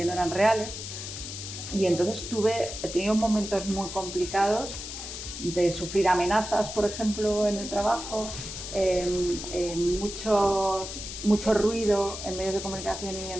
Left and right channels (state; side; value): noise; left; hiss, 8 dB below the sound